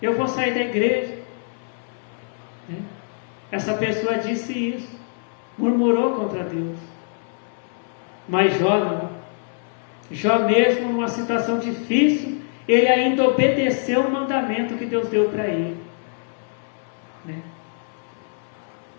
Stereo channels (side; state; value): right; silent; 63 dB below the other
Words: Eu vou sair da igreja. Essa pessoa disse isso, murmurou contra Deus. Mas Jó não. Jó, mesmo numa situação difícil, ele ainda obedeceu o mandamento que Deus deu para ele.